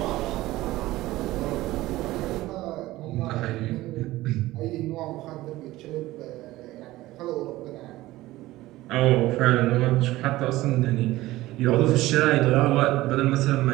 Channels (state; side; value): quieter; left; 17.3 dB